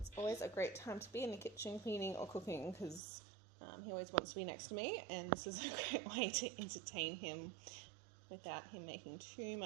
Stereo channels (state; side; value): drops out; left; at 3.0 s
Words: always a great time to be in the kitchen cleaning or cooking because he always wants to be next to me, and this is a great way to entertain him without him making too